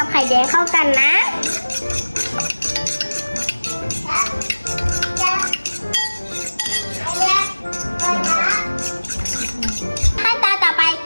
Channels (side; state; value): both; inverted; correlation -1.00